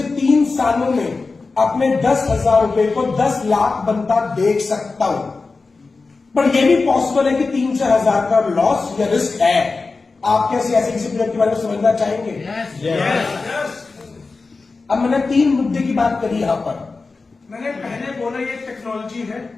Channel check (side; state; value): right; quieter; 4.0 dB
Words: 3 सालों में अपने 10,000 रुपए को 10 लाख बनता देख सकता हूं। पर यह भी पॉसिबल है कि 3 से 1000 का लॉस या रिस्क है। आप कैसे ऐसे किसी प्रोजेक्ट के बारे में समझना चाहेंगे? yes. अब मैंने 3 मुद्दे की बात करी यहां पर। मैंने पहले बोला ये टेक्नोलॉजी